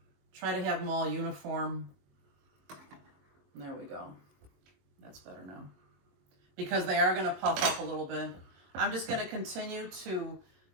Try to have them all uniform. And there we go. That's better now. Because they are gonna puff up a little bit. I'm just gonna continue to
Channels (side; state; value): left; late; 22 ms